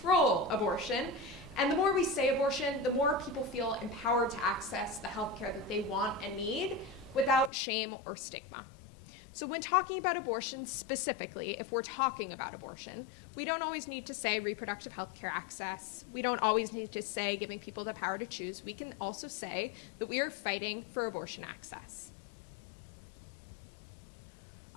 abortion. And the more we say abortion, the more people feel empowered to access the healthcare that they want and need without shame or stigma. So when talking about abortion specifically, if we're talking about abortion, we don't always need to say reproductive healthcare access. We don't always need to say giving people the power to choose. We can also say that we are fighting for abortion access.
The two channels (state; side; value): drops out; right; at 7.5 s